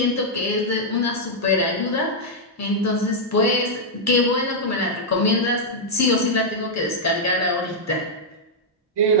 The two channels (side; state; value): both; normal; correlation -0.05